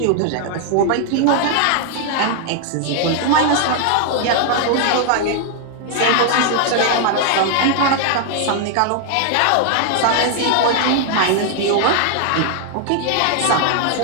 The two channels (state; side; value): different; both; correlation 0.00